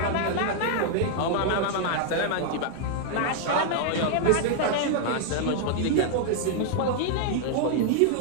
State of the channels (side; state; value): both; different; correlation 0.00